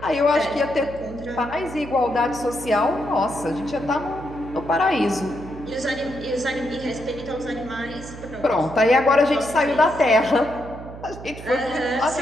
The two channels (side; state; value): right; noise; hum, 13 dB below the sound